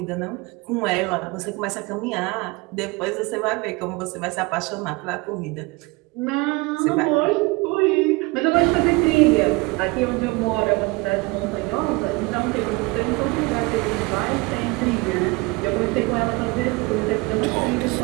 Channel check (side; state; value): left; quieter; 25.0 dB